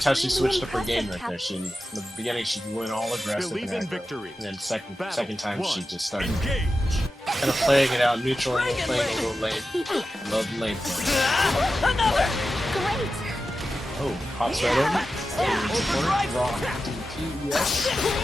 how was she really switched up her game right impressive, there. She, in the beginning, she went all aggressive Believe and in aggro. victory. And then Battle second time, 1. she just started Engage. kind of playing it out, neutral and playing a little lane. Love lane play. Another! Great! Oh, hops right over. Support, raw. DP, yes.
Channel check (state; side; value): normal; both; correlation 0.92